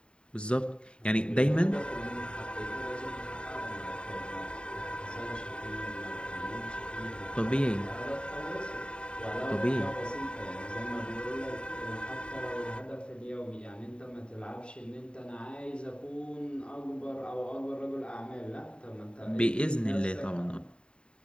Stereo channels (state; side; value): late; right; 0.052 ms